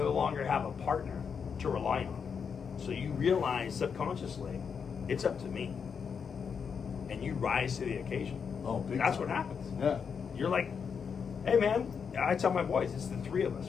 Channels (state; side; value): quieter; right; 6.5 dB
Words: longer have a partner to rely on. So you realize subconsciously, it's up to me. And you rise to the occasion. Oh, big That's time. what happens. Yeah. You're like, hey man, I tell my boys, it's the 3 of us.